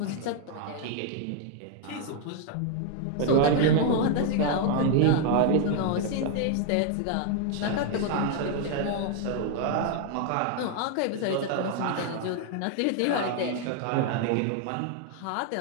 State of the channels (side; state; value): both; different; correlation 0.00